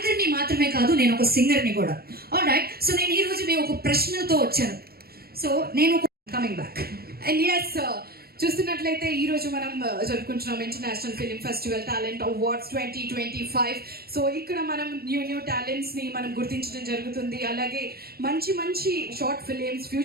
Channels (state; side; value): late; left; 0.45 ms